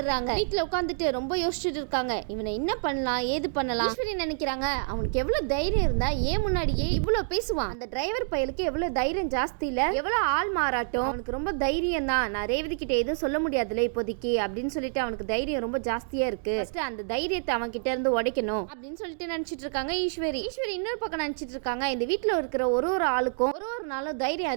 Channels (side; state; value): left; silent; digital silence